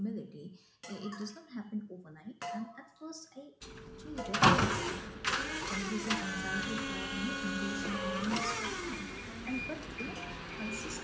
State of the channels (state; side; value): identical; both; correlation 1.00